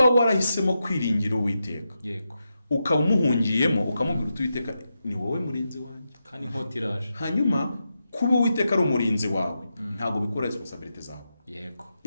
warahisemo kwiringira Uwiteka, yego, ukaba umuhungiyemo ukamubwira Uwiteka ni wowe murinzi wanjye, kandi inkota iraje, hanyuma kuba Uwiteka ari umurinzi wawe, ntabwo bikora responsibility zawe. yego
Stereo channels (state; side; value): inverted; both; correlation -0.87